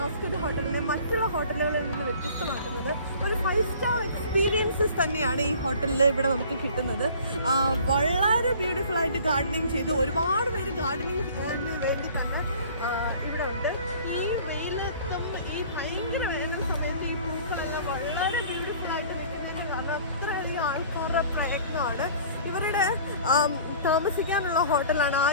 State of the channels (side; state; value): both; inverted; correlation -0.49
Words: ഹോട്ടലിനെ മറ്റുള്ള ഹോട്ടലുകളിൽ നിന്ന് വ്യത്യസ്തമാക്കുന്നത്. ഒരു 5 സ്റ്റാർ എക്സ്പീരിയൻസസ് തന്നെയാണ് ഈ ഹോട്ടലിൽ ഇവിടെ നമുക്ക് കിട്ടുന്നത്. വളരെ ബ്യൂട്ടിഫുൾ ആയിട്ട് ഗാർഡനിങ് ചെയ്ത് ഒരുപാട് പേര് ഗാർഡനിങ് വേണ്ടി തന്നെ ഇവിടെ ഉണ്ട്. ഈ വെയിലത്തും ഈ ഭയങ്കര വേനൽ സമയത്ത് ഈ പൂക്കളെല്ലാം വളരെ ബ്യൂട്ടിഫുൾ ആയിട്ട് നിൽക്കുന്നതിന് കാരണം അത്രയധികം ആൾക്കാരുടെ പ്രയത്നമാണ്. ഇവരുടെ താമസിക്കാനുള്ള ഹോട്ടലാണ് ആ